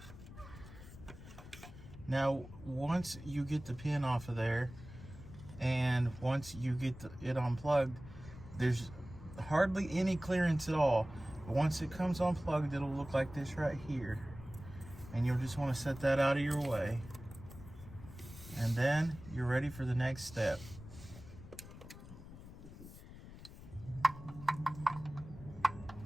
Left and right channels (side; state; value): left; noise; rumble, 15 dB below the sound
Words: Now, once you get the pin off of there, and once you get it unplugged, there's hardly any clearance at all. But once it comes unplugged, it'll look like this right here. And you'll just want to set that out of your way. And then you're ready for the next step.